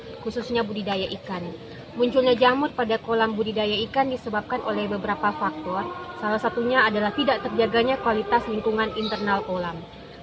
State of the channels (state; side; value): identical; both; correlation 1.00